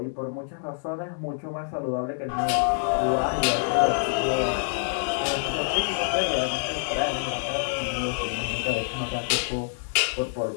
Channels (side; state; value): right; silent; digital silence